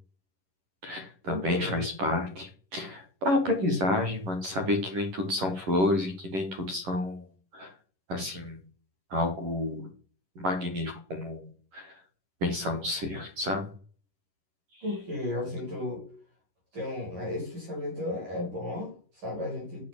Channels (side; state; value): left; late; 11 ms